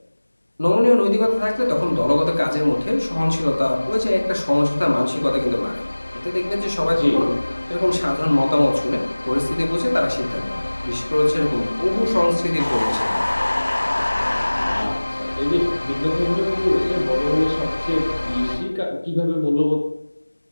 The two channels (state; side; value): inverted; both; correlation -1.00